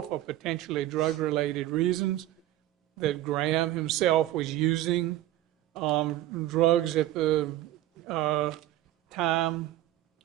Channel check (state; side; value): quieter; left; 14.3 dB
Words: for potentially drug-related reasons, that Graham himself was using drugs at the time